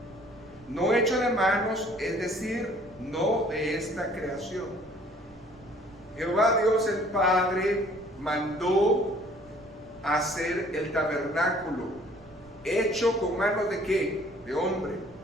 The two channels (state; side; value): noise; right; rumble, 25 dB below the sound